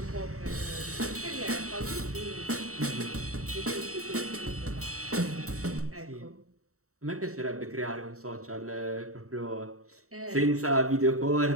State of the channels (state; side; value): late; left; 0.64 ms